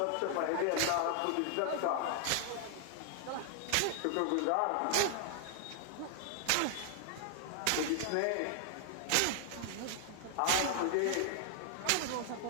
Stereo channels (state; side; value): different; both; correlation 0.00